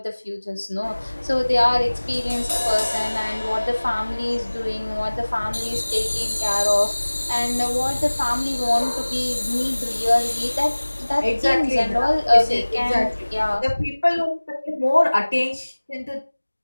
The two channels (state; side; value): inverted; both; correlation -1.00